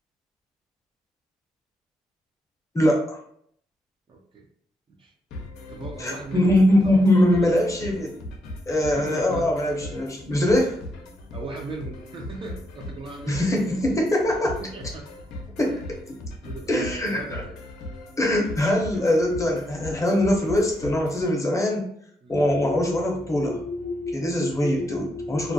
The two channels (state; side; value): normal; both; correlation 0.80